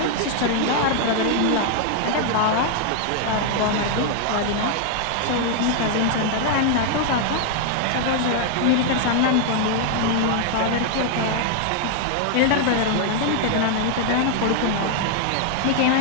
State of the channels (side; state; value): both; different; correlation 0.00